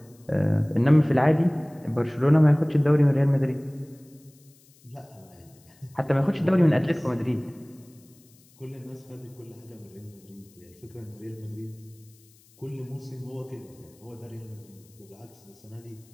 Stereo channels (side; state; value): left; noise; hiss, 29 dB below the sound